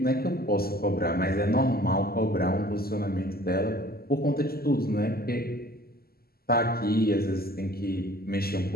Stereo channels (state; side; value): late; right; 0.45 ms